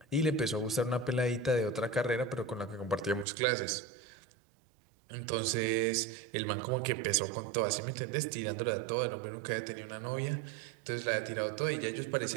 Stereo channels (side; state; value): left; drops out; at 3.2 s